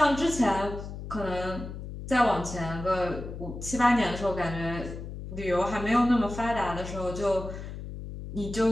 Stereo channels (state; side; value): noise; left; hum, 9 dB below the sound